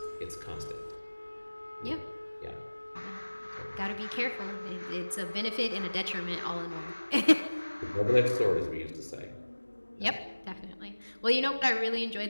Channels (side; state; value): both; inverted; correlation -1.00